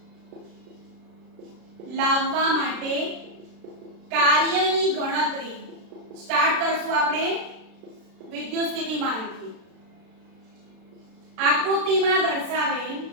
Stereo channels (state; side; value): late; left; 36 ms